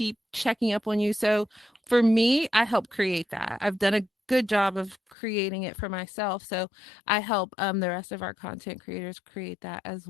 checking up on you. So for me, I help create that. I've done a good job of creating it for myself. So I help the rest of our content creators create that as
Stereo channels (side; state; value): right; drops out; at 5.2 s